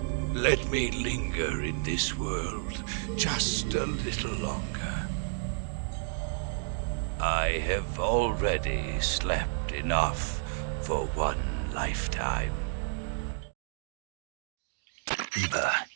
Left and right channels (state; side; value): silent; left; digital silence